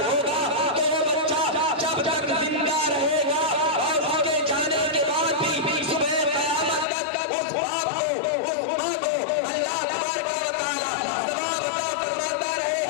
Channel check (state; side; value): drops out; right; at 6.9 s